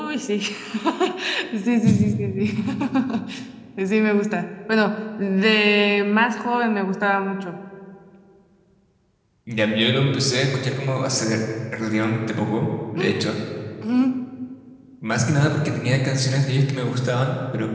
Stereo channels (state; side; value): identical; both; correlation 1.00